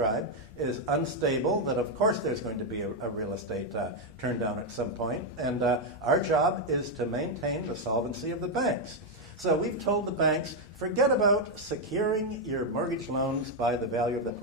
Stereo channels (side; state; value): both; normal; correlation 0.02